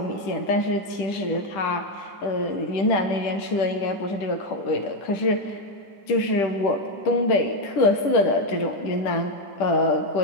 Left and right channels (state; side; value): late; right; 10 ms